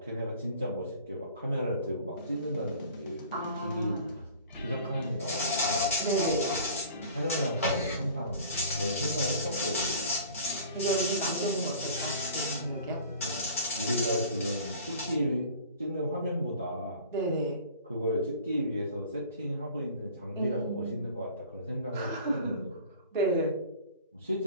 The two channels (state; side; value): inverted; both; correlation -0.45